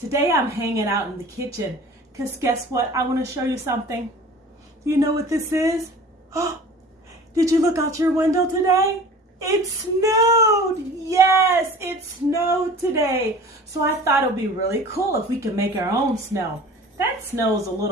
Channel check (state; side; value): normal; both; correlation 0.42